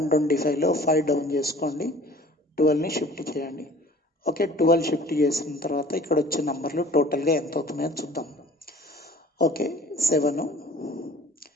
5 డౌన్ చేసుకోండి, 12ని షిఫ్ట్ చేయండి. ఓకే 12 షిఫ్ట్ చేసిన తర్వాత ఇక్కడ వచ్చే నంబర్లు టోటల్గా ఎంత అవుతున్నాయో చూద్దాం. ఓకే 7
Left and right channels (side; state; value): both; normal; correlation 0.48